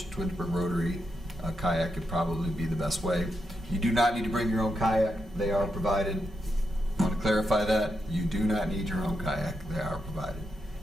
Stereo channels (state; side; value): normal; both; correlation 0.84